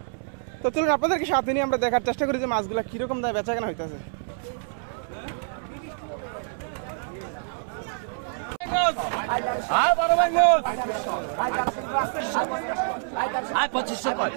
তো চলুন আপনাদেরকে সাথে নিয়ে আমরা দেখার চেষ্টা করি যে মাছগুলো কীরকম দামে বেচাকেনা হইতেছে।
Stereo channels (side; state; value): left; silent; 61 dB below the other